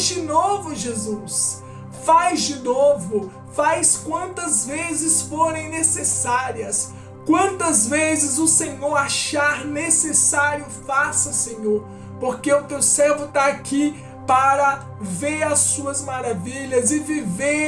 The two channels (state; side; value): identical; both; correlation 1.00